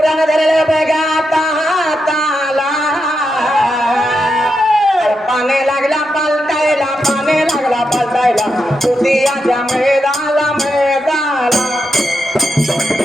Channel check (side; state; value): both; normal; correlation 0.85